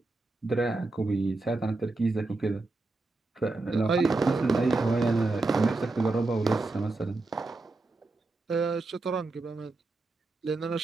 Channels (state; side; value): quieter; left; 3.3 dB